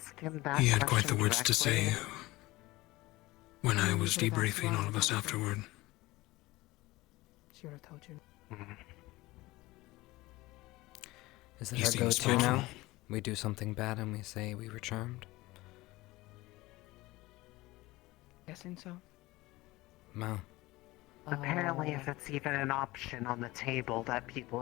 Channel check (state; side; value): quieter; right; 19.8 dB